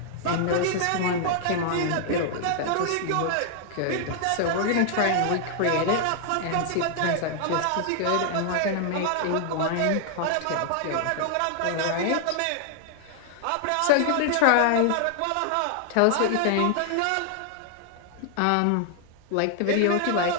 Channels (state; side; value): different; both; correlation 0.00